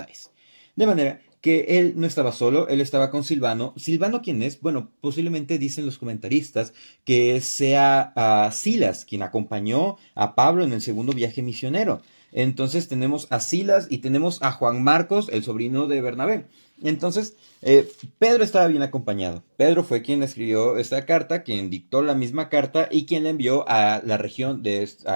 De manera que él no estaba solo, él estaba con Silvano. ¿Silvano quién es? Bueno, posiblemente dicen los comentaristas que sea Silas, quien acompañó a Pablo en el segundo viaje misionero. Entonces tenemos a Silas y tenemos a Juan Marcos, el sobrino de Bernabé. Entonces, Pedro estaba bien acompañado. Pedro fue quien escribió esta carta, quien dictó la misma carta y quien la envió a la región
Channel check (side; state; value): both; inverted; correlation -1.00